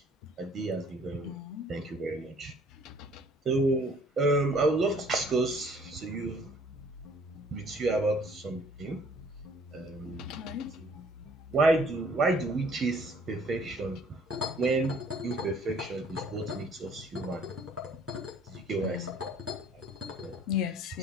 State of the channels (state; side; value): normal; both; correlation 0.57